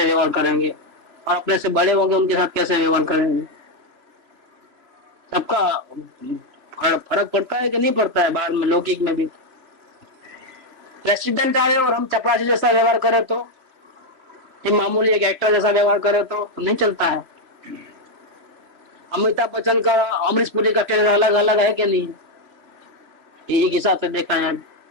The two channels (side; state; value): left; late; 3.4 ms